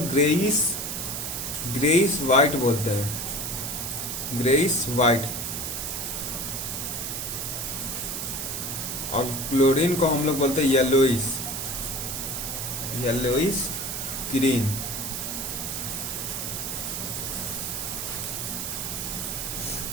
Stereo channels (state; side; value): noise; right; hiss, 4 dB below the sound